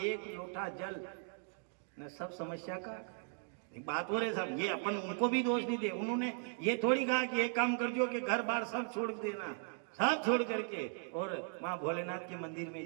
लोटा जल न सब समस्या का एक बात हो रहे साहब। ये अपन उनको भी दोष नहीं दे, उन्होंने ये थोड़ी कहा कि एक काम कर जो कि घर बार सब छोड़ देना, सब छोड़ करके और वहां भोलेनाथ के मंदिर में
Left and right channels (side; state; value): left; silent; 53 dB below the other